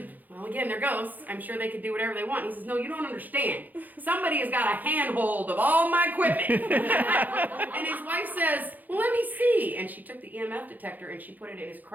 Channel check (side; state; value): left; late; 0.083 ms